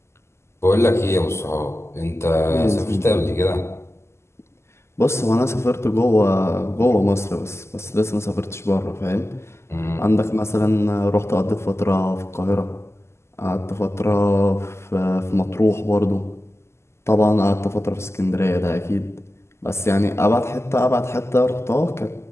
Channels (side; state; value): right; late; 0.13 ms